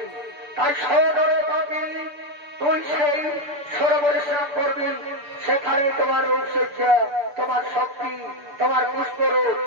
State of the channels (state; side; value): late; left; 6.8 ms